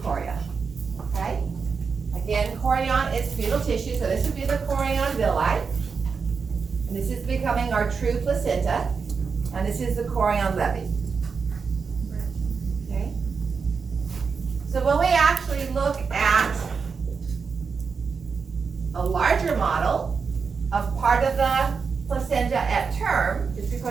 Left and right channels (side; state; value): left; quieter; 5.4 dB